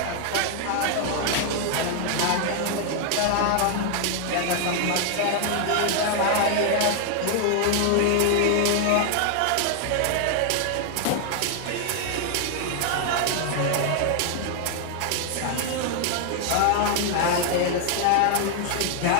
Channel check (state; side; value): different; both; correlation 0.00